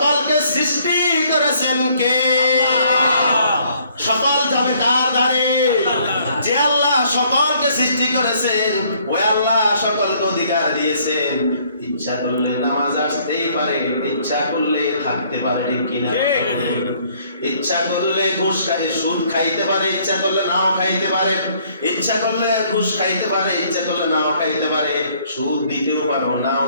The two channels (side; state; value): both; inverted; correlation -0.63